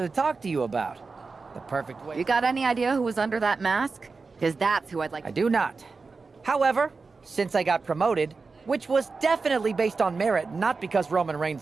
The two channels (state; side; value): quieter; left; 4.3 dB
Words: to talk to you about. The perfect way. You got any idea who was under that mask? Because that's who I'd like. I do not. However, since I got promoted, which was definitely based on merit, not because Roman